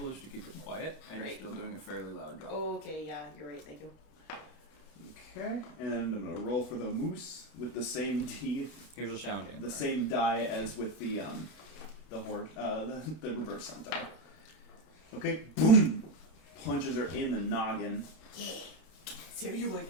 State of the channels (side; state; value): right; late; 32 ms